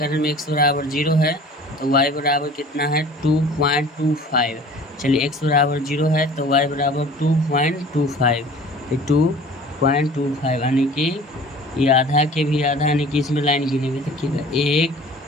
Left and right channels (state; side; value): normal; both; correlation 0.46